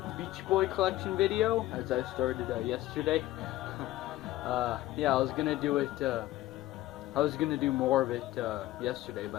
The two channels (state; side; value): quieter; right; 16.0 dB